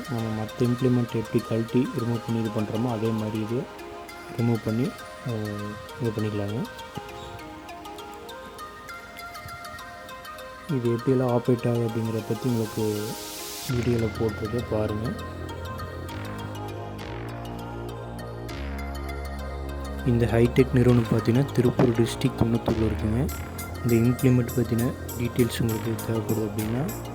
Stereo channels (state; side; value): identical; both; correlation 1.00